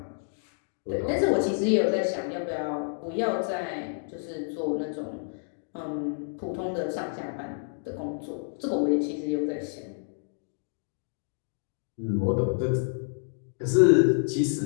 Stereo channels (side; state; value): right; silent; digital silence